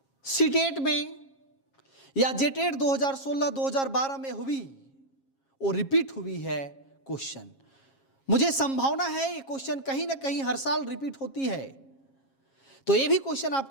सीटेट में या जेटेट 2016-2012 में हुई और रिपीट हुई है क्वेश्चन। मुझे संभावना है ये क्वेश्चन कहीं ना कहीं हर साल रिपीट होती है, तो ये भी क्वेश्चन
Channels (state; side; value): late; right; 7.4 ms